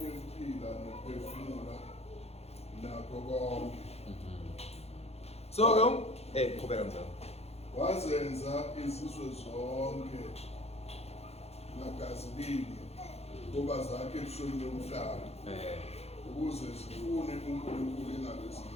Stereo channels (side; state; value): right; late; 0.30 ms